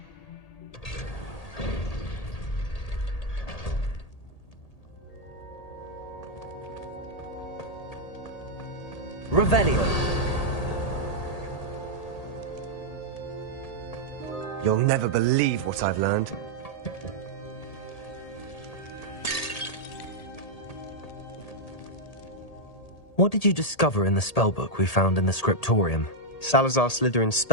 Revelio. You'll never believe what I've learned. What did you discover in the spellbook we found in the scriptorium? Salazar Slytherin's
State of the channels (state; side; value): late; right; 1.8 ms